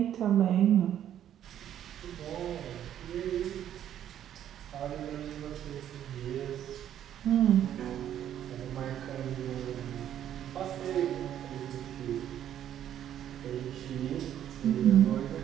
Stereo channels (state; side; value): quieter; left; 10.6 dB